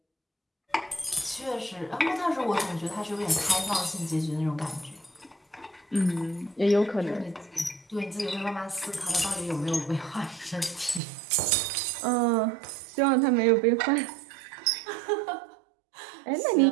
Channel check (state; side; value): drops out; left; at 11.0 s